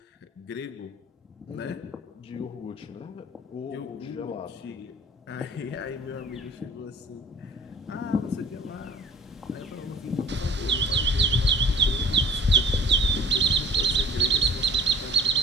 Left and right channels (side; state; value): both; normal; correlation 0.46